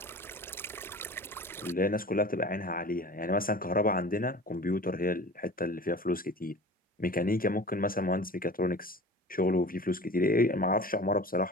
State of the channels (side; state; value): both; normal; correlation 0.40